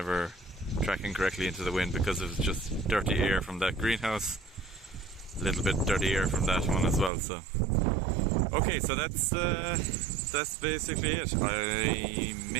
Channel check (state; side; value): drops out; left; at 7.1 s